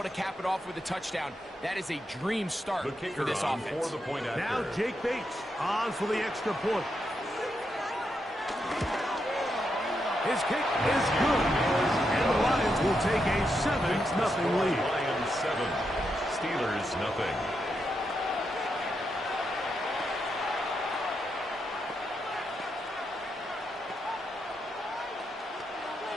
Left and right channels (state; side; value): normal; both; correlation 0.83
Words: to cap it off with a touchdown, that is a dream start for this offense. Now Jake Bates on for the extra point. His kick is good. And the Lions will take a 7-0 lead. Lions 7, Steelers nothing.